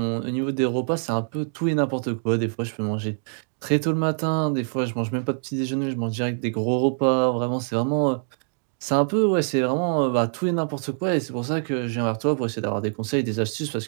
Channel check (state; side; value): silent; left; digital silence